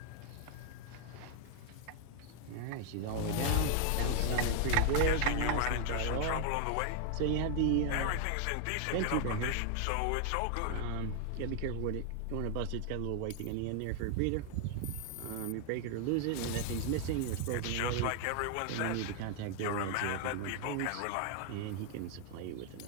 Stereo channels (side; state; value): both; different; correlation 0.00